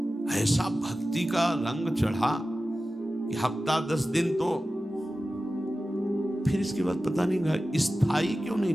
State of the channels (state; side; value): normal; both; correlation 0.95